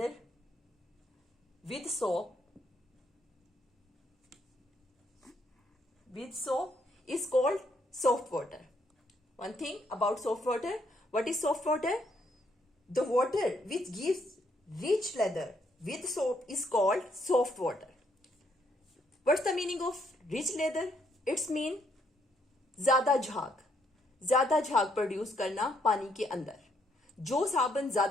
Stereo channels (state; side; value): normal; both; correlation 0.72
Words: with soap is called soft water. One thing about soft water. What is soft water? The water which gives rich lather with soap is called soft water. What's the meaning of rich lather? It's mean ज्यादा झाग प्रोड्यूस करना पानी के अंदर. जो साबुन